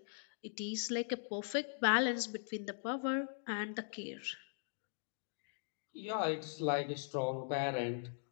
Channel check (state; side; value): silent; right; digital silence